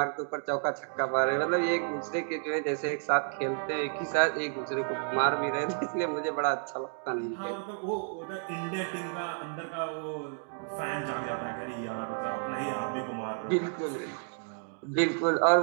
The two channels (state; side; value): silent; left; 57 dB below the other